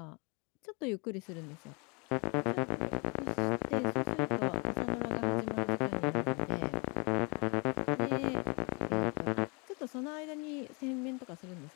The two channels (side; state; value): right; quieter; 31.8 dB